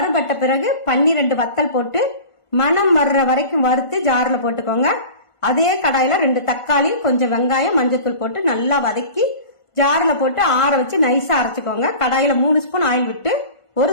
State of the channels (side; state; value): right; late; 1.5 ms